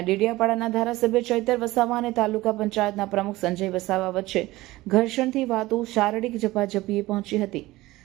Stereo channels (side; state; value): left; quieter; 18.6 dB